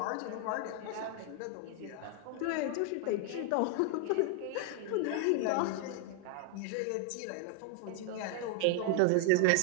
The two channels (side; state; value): both; different; correlation 0.01